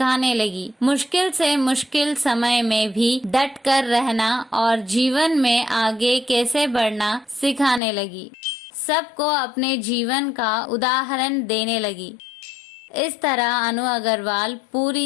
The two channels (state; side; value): drops out; right; at 7.8 s